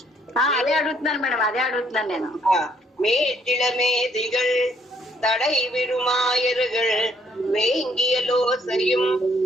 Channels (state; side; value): normal; both; correlation 0.67